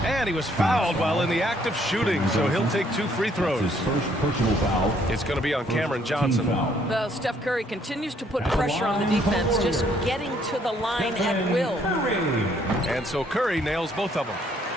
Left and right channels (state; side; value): normal; both; correlation 0.66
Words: And he was fouled while in the act of shooting, so he'll take 2 free throws. His first personal foul. It's going to be on Cameron Johnson. Well, Steph Curry continues to put pressure on the defense, just getting to the line at will. And so Curry nails both of them.